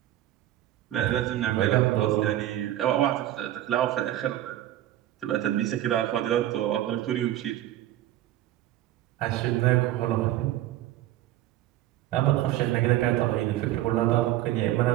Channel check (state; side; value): quieter; left; 13.8 dB